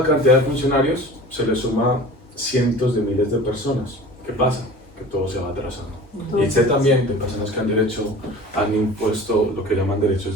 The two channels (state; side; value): normal; both; correlation 0.41